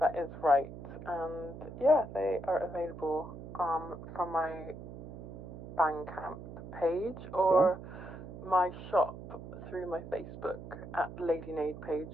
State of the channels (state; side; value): noise; right; hum, 12 dB below the sound